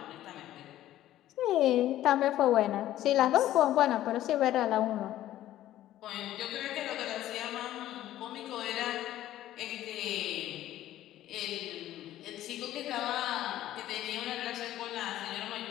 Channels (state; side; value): quieter; right; 13.5 dB